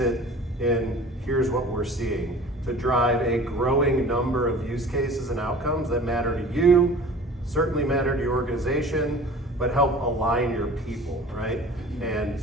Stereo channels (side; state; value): both; normal; correlation 0.43